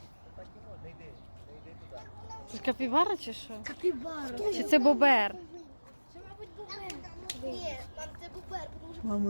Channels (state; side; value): inverted; both; correlation -1.00